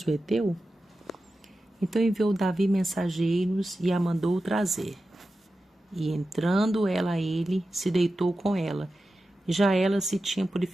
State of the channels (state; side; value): normal; both; correlation 0.92